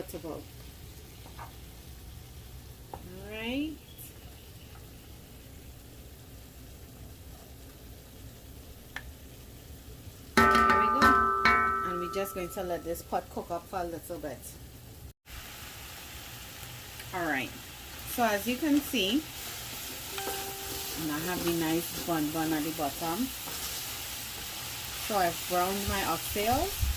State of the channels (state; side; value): identical; both; correlation 1.00